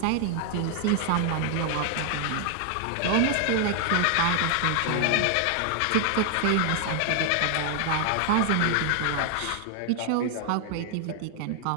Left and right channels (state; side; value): different; both; correlation 0.00